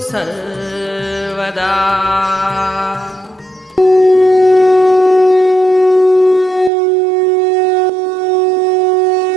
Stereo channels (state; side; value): drops out; left; at 6.7 s